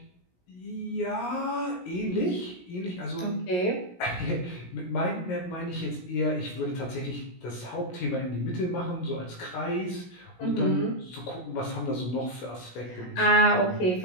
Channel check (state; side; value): late; right; 17 ms